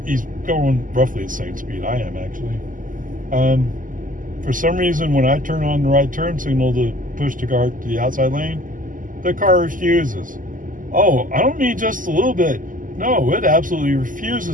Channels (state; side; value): late; left; 0.39 ms